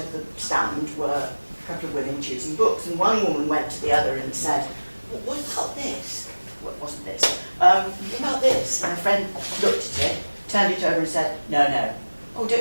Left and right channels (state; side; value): inverted; both; correlation -1.00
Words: the stand were a couple of women choosing books, and one woman went to the other and said, what about this? Well, it wasn't this. What about this? And my friend looked at it, turned it over and said, no. Oh,